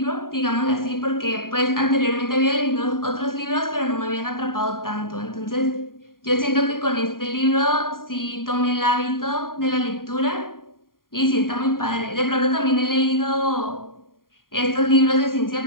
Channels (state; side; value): late; right; 0.91 ms